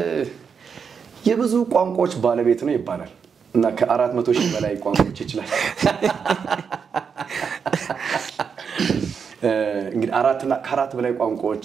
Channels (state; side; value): quieter; left; 6.4 dB